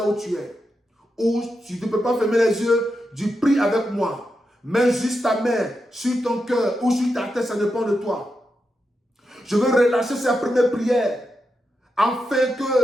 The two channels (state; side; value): normal; both; correlation 0.87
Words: où tu es. Ou si tu ne peux pas fermer les yeux, tu pries avec moi. Mets juste ta main sur ton cœur ou sur ta tête, ça dépend de toi. Je veux relâcher cette première prière afin